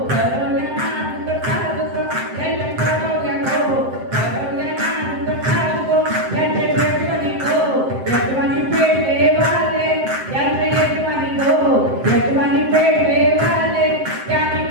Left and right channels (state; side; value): late; left; 7.7 ms